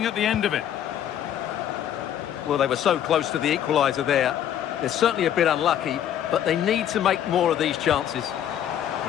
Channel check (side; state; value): right; quieter; 10.3 dB